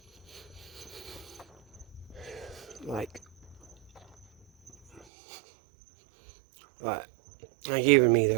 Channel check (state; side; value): drops out; left; at 5.1 s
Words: Like even me